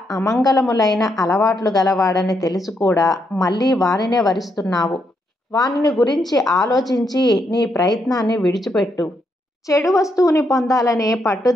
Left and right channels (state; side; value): normal; both; correlation 0.79